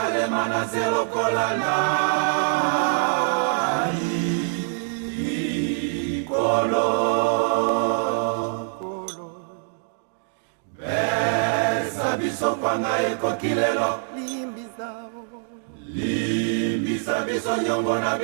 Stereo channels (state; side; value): silent; left; digital silence